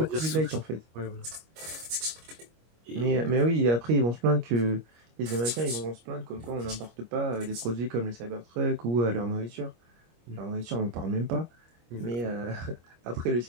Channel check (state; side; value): late; left; 25 ms